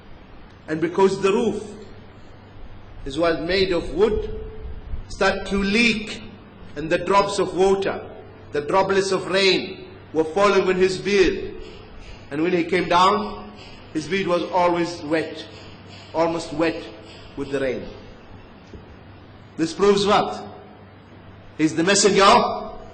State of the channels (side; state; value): both; identical; correlation 1.00